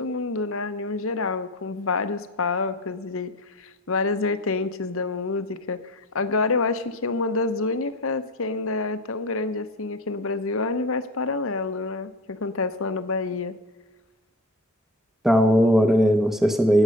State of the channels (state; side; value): normal; both; correlation 0.36